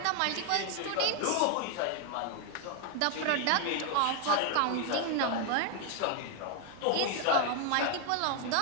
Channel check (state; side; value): different; both; correlation 0.01